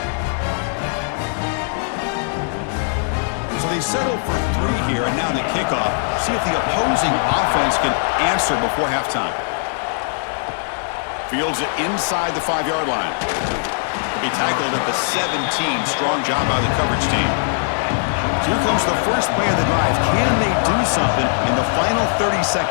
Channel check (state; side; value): silent; right; 63 dB below the other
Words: So they settle for 3 here, and now the kickoff. See if the opposing offense can answer before halftime. Fields it inside the 5-yard line. He'll be tackled at the 17. Strong job by the coverage team. So here comes the first play of the drive. Can they do something in the final 30